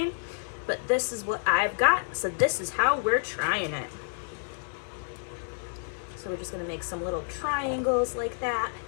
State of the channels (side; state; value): right; silent; digital silence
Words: But this is what I've got, so this is how we're trying it. So we're just going to make some little triangles like that.